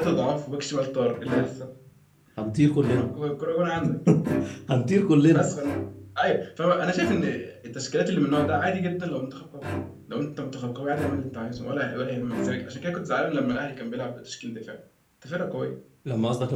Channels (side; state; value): both; identical; correlation 1.00